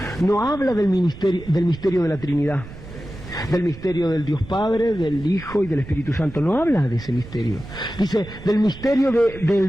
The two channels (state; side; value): noise; right; rumble, 15 dB below the sound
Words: No habla del misterio de la Trinidad, del misterio del Dios Padre, del Hijo y del Espíritu Santo. No habla de ese misterio. Dice del misterio